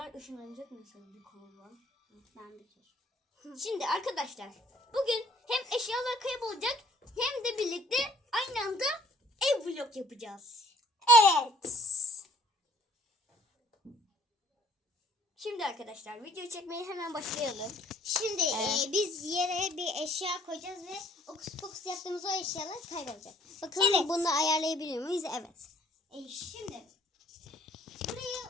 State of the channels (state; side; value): normal; both; correlation 0.59